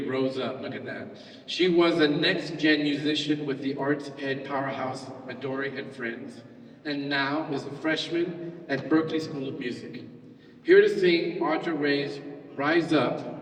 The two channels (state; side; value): identical; both; correlation 1.00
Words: rose up, look at that. She was a next-gen musician with the arts ed powerhouse Midori and Friends, and now is a freshman at Berklee School of Music. Here to sing Audra Ray's Rise